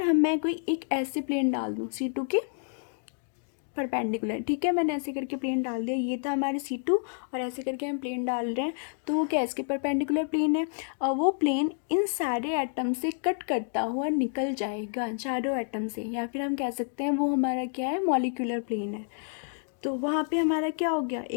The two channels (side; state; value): right; silent; 59 dB below the other